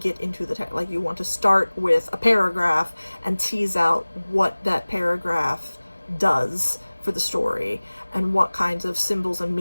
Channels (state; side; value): inverted; both; correlation -1.00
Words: into the text. Like, you want to start with a paragraph and tease out what that paragraph does for the story and what kinds of symbols and